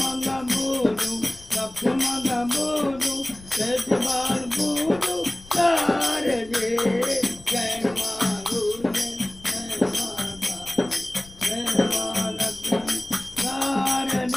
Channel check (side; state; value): left; noise; rumble, 20 dB below the sound